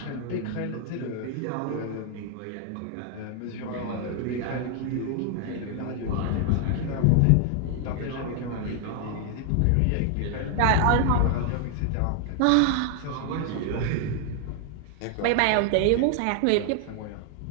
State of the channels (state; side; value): different; both; correlation 0.00